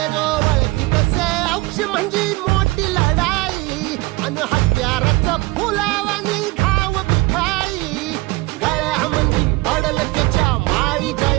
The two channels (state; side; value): quieter; left; 22.3 dB